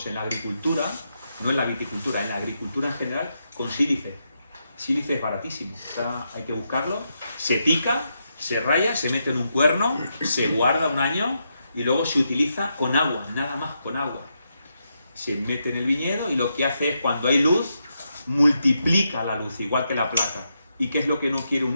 en la agricultura, no en la viticultura, en la agricultura en general, con sílice. Sílice es baratísimo, hay que buscarlo, se pica, se raya, se mete en un cuerno, se guarda un año y luego se utiliza con agua, nada más con agua. Se mete en el viñedo y lo que hace es, cuando hay luz, multiplica la luz, igual que la placa. ¿Y qué es lo que no quiere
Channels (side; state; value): both; inverted; correlation -0.83